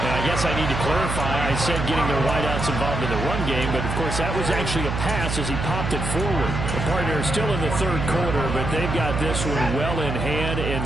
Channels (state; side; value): noise; right; hum, 3 dB below the sound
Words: I guess I need to clarify. I said getting their wideouts involved in the run game, but of course that was actually a pass as he popped it forward. The partner is still in the 3rd quarter, but they've got this one well in hand